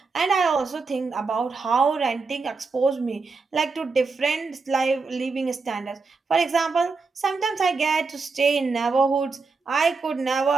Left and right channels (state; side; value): quieter; left; 4.4 dB